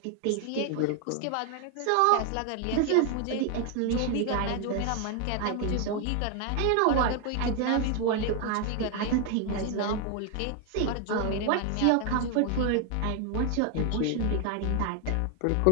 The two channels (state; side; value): different; both; correlation 0.01